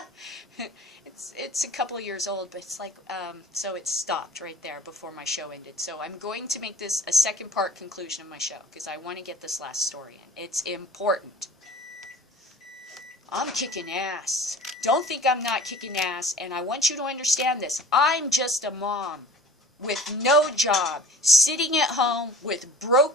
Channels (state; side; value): normal; both; correlation 0.44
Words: It's a couple of years old, but it's like, so it stopped right there before my show ended. So I'm going to make this a second part conclusion of my show, because I want to get this last story in. It's important. I'm kicking ass. Don't think I'm not kicking ass, and I want you to understand this. I'm just a mom with no job, sitting at home with